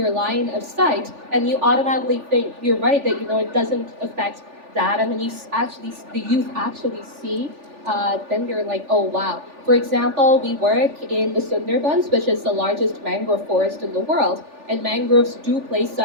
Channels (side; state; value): left; late; 3.4 ms